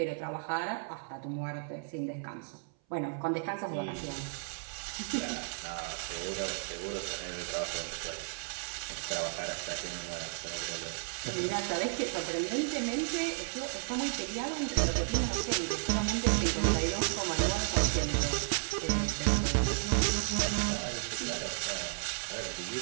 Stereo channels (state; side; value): silent; left; 55 dB below the other